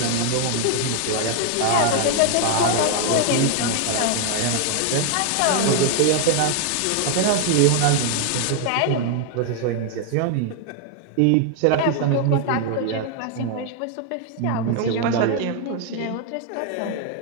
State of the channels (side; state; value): both; different; correlation 0.00